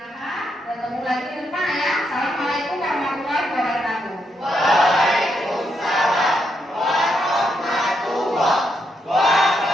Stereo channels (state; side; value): normal; both; correlation 0.80